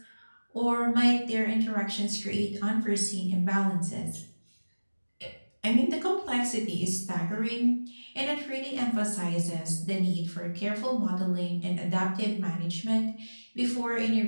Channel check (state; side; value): inverted; both; correlation -1.00